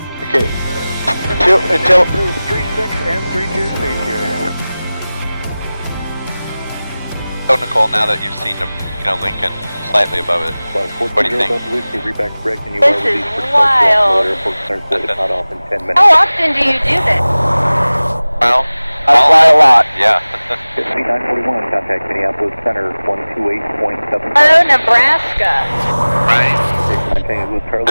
Okay. Until 36 and 32 safety areas. So Nicole, now that you've seen Lincoln slightly above it, what do you think? This is wild. How often do you do this? Well, I fly a lot. Yeah. C941, contact Minneapolis Center 128.7. Oh, Nebraska. Right. I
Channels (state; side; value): inverted; both; correlation -0.98